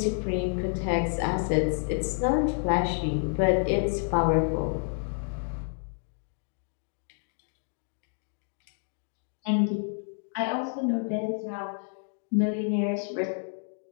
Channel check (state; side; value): silent; right; 58 dB below the other